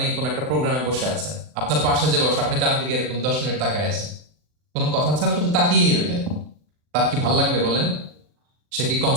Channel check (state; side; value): late; left; 39 ms